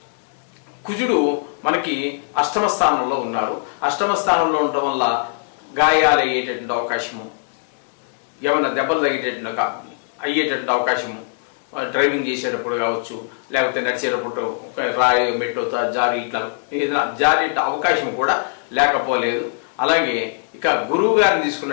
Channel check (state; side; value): silent; right; digital silence